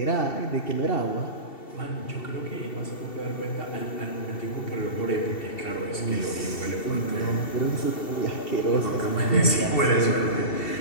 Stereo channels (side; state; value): right; late; 2.7 ms